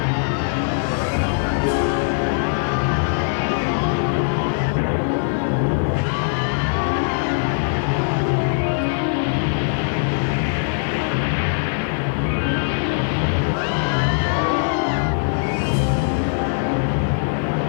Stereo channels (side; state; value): right; silent; digital silence